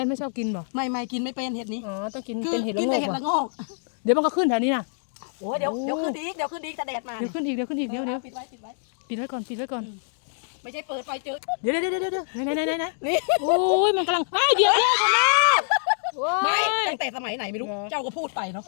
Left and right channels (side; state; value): right; silent; digital silence